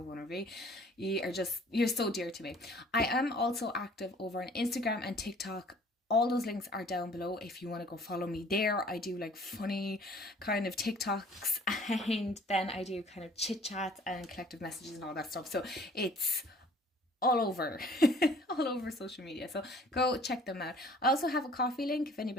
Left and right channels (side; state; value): both; normal; correlation 0.53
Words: one of you. You're so dear to me. I am also active over on Instagram and TikTok. All those links are down below if you want to go follow me there. I do like funny kind of TikToks, and then I do kind of chit chats and collective messages and all that stuff. So it's all over all over social media, so go check them out. I also have a coffee link if